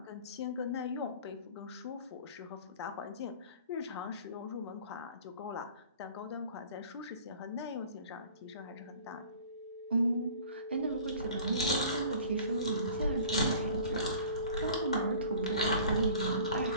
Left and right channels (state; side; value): inverted; both; correlation -0.46